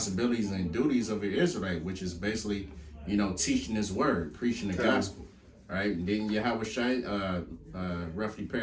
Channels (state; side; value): identical; both; correlation 1.00